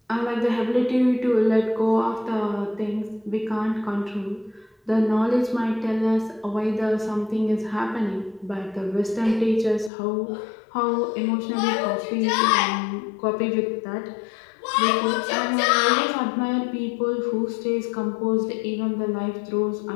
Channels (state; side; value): drops out; right; at 9.9 s